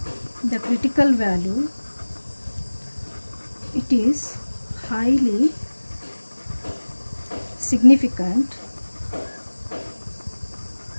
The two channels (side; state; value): both; inverted; correlation -1.00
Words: the critical value. It is highly significant.